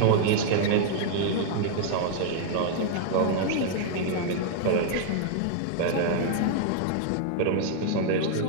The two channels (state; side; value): different; both; correlation -0.01